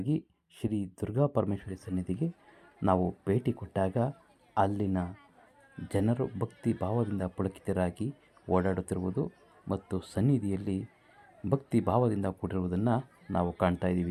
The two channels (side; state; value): both; identical; correlation 1.00